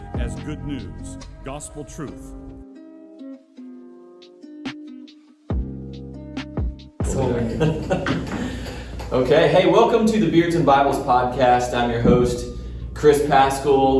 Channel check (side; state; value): both; identical; correlation 1.00